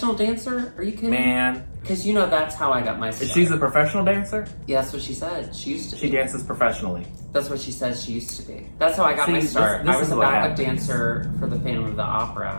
dancer? Are you kidding? Man. Because you know that's how I got my start. She's a professional dancer? Yeah, that's what she said. She used to be. She dances professionally. That's what she says she used to be. That's how I got my start. I was a backup dancer for the Phantom of the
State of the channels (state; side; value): inverted; both; correlation -1.00